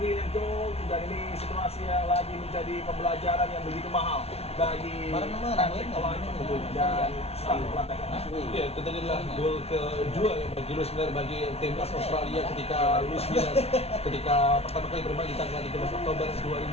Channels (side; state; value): right; late; 0.30 ms